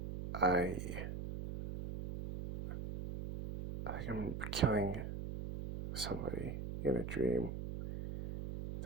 I think I'm killing somebody in a dream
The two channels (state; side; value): noise; right; hum, 6 dB below the sound